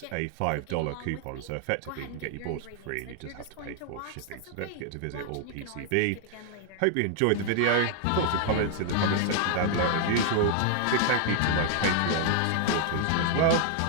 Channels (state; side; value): different; both; correlation 0.00